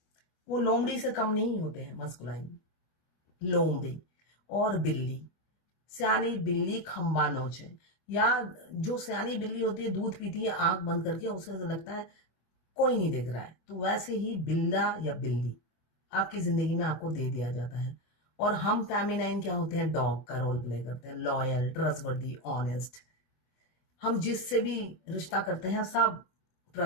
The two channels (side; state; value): right; late; 24 ms